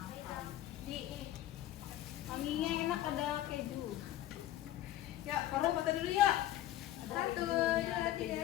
Di ini. Wanginya enak, ada keju. Ya, Farul foto dulu yuk. 1, 2,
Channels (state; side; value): quieter; right; 13.8 dB